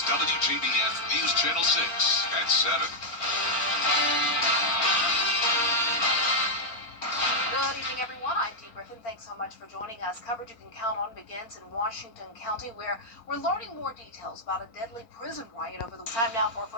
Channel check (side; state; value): right; late; 4.4 ms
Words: WJBF News Channel 6 at 7. Good evening, everyone. I'm Dee Griffin. Thanks so much for joining us. Coverage you can count on begins in Washington County, where we're learning more details about a deadly prison riot over the time now for a